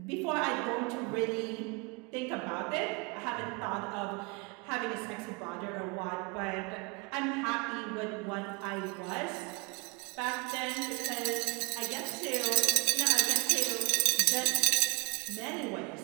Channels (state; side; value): quieter; left; 31.1 dB